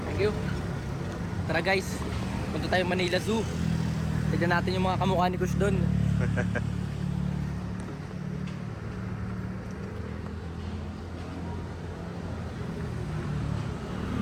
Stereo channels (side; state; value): both; identical; correlation 1.00